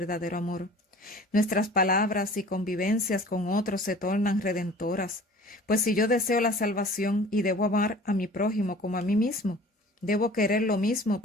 amor. Nuestras palabras y convivencias con otros se tornan redentoras, pues si yo deseo la salvación y debo amar a mi prójimo como a mí mismo, debo querer lo mismo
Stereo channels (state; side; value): normal; both; correlation 0.46